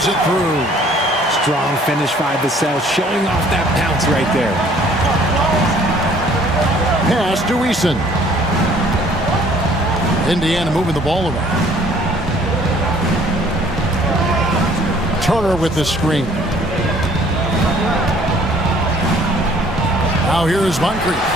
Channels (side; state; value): both; normal; correlation 0.57